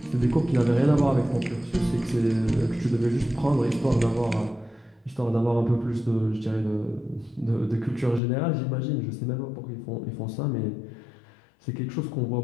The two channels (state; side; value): drops out; right; at 8.2 s